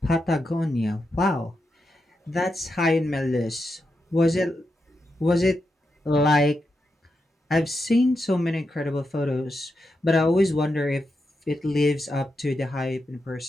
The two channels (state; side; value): normal; both; correlation 0.86